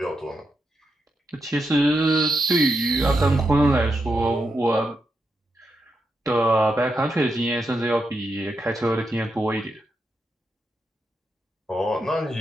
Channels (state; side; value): normal; both; correlation 0.84